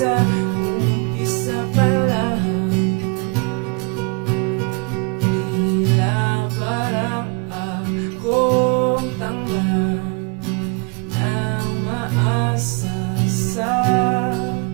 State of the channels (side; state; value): left; quieter; 30.8 dB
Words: umpisa pa lang. Tila parang akong tanga na umaasa sa